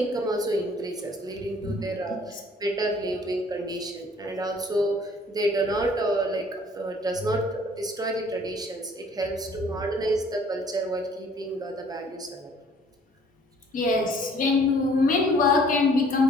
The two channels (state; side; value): normal; both; correlation 0.56